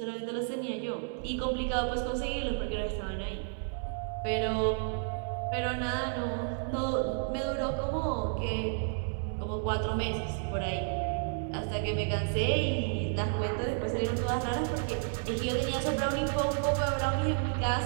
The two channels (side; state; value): left; silent; digital silence